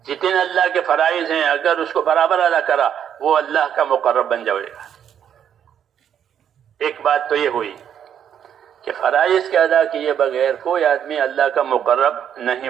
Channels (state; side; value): quieter; left; 9.0 dB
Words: جتنے اللہ کے فرائض ہیں اگر اس کو برابر ادا کرا وہ اللہ کا مقرب بن جائے گا۔ ایک بات تو یہ ہوئی کہ فرائض کے ادا کیے بغیر کوئی آدمی اللہ کا مقرب نہیں